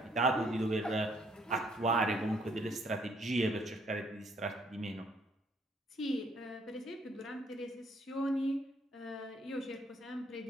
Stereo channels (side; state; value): both; normal; correlation 0.66